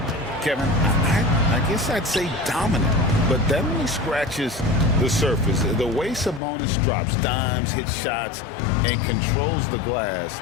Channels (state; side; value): drops out; right; at 6.4 s